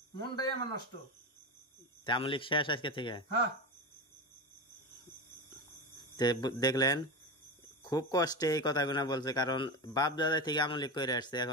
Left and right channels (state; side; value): normal; both; correlation 0.21